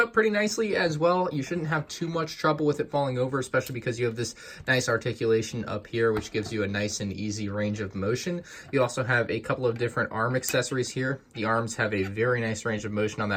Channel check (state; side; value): identical; both; correlation 1.00